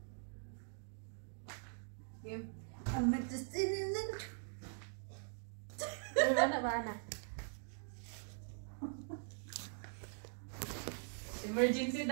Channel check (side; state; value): left; silent; digital silence